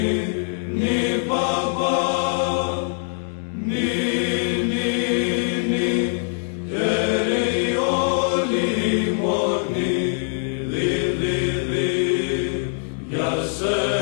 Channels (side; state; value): right; silent; digital silence